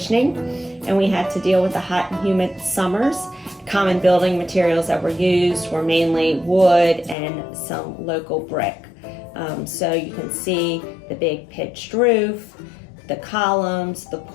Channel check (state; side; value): drops out; right; at 7.2 s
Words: and we had to deal with the hot and humid summers. Common building materials that were used were mainly wood and some local brick. So you can see the big pitched roof, the columns, the